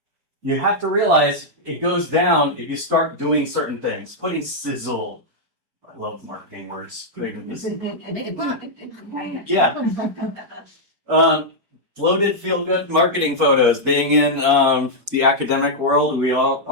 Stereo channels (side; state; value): left; late; 4.8 ms